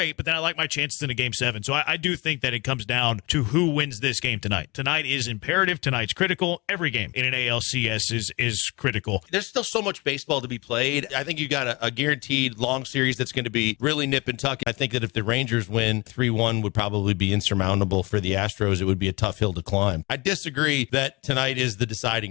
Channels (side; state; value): right; quieter; 25.1 dB